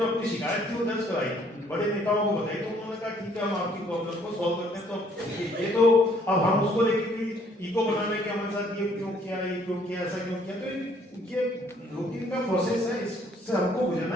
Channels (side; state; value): both; normal; correlation 0.63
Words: अपनी शिकायत थी वो दर्ज कराई, बड़े नेताओं को बताई, तो उन्होंने कहा ठीक है हम आपकी प्रॉब्लम को सॉल्व करते हैं। तो ये तो अब हम उसको लेके ईगो बनाने के हमारे साथ ये क्यों किया, ऐसा क्यों किया, तो ये रूटीन का प्रोसेस है, इससे हमको गुजरना